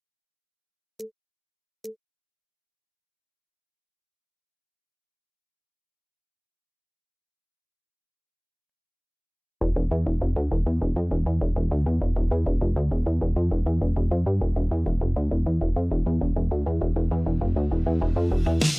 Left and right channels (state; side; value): identical; both; correlation 1.00